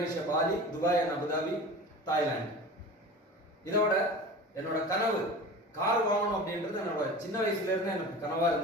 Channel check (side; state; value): both; normal; correlation 0.35